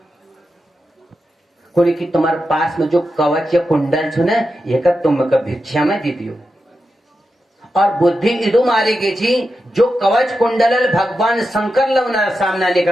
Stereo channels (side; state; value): both; normal; correlation 0.89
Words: कुणी की तुम्हारे पास में जो कवच या कुंडल छो ना ये का तुम का भिक्षा में दे दियो। और बुद्धि इदु मारी गई थी जो कवच कुंडल भगवान शंकर लवना सामना नहीं